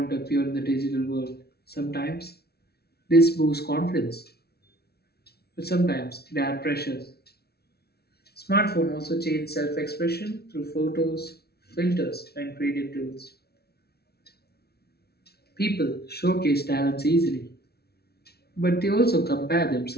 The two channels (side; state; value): right; late; 0.46 ms